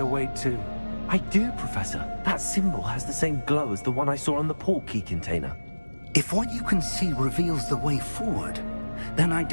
way to... I do, Professor. That symbol has the same glow as the one I saw on the port key container. If what you can see reveals the way forward, then I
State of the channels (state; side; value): inverted; both; correlation -1.00